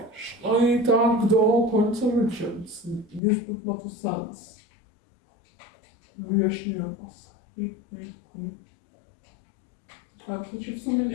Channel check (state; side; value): drops out; right; at 3.2 s